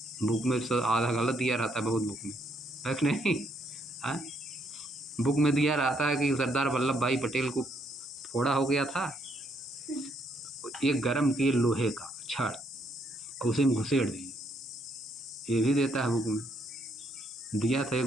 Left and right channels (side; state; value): both; normal; correlation 0.72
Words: बुक में आधा गलत दिया रहता है बहुत बुक में, है कि नहीं? हाँ, बुक में दिया रहता है कि सरदार वल्लभ भाई पटेल को फोड़ा हो गया था, एक गरम किए लोहे का छड़ उसे में घुसेड़ दिए, ये भी देता है बुक में, दिया था एक